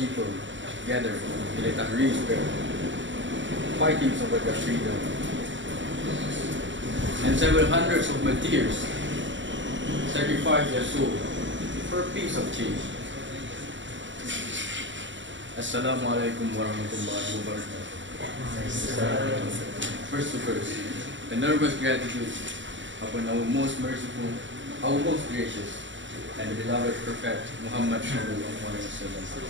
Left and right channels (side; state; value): left; late; 0.54 ms